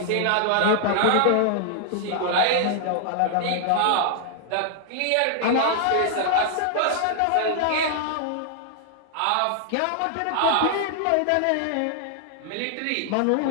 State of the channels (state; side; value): different; both; correlation 0.00